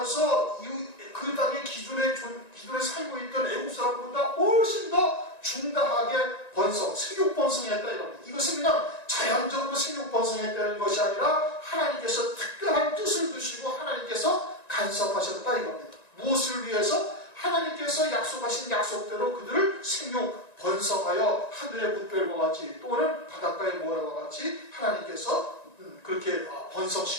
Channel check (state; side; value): late; right; 1.9 ms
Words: 그 땅에 기존에 살고 있던 애국 사람보다 훨씬 더 중다하게 번성, 생육 번성했다 이겁니다. 이것은 그냥 자연적으로 생육 번성했다는 것이 아니라 하나님께서 특별한 뜻을 두시고 하나님께서 간섭하셨다 이겁니다. 무엇을 위해서? 하나님께서 약속하신 약속대로 그들을 생육 번성하여 하늘의 뭇별과 같이 또는 바닷가의 모래와 같이 하나님께서 그렇게